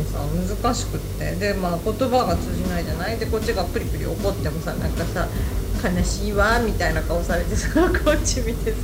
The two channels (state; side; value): identical; both; correlation 1.00